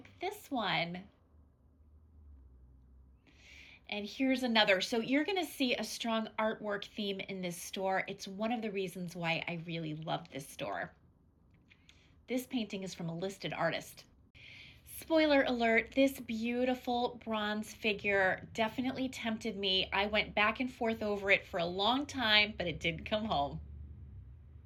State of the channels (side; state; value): both; identical; correlation 1.00